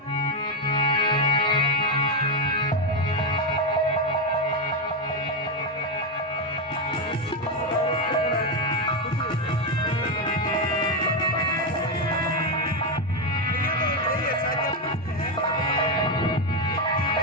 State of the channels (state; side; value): normal; both; correlation 0.07